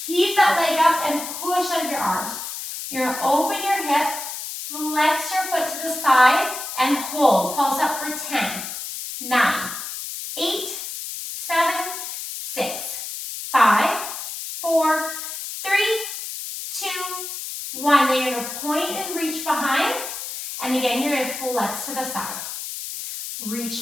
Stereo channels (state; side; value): noise; left; hiss, 7 dB below the sound